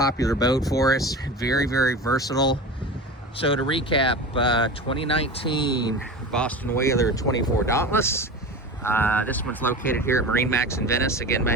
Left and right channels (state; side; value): normal; both; correlation 0.31